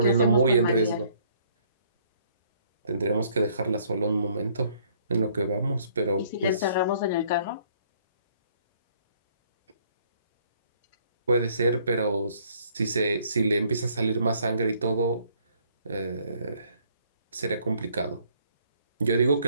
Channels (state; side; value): inverted; both; correlation -0.63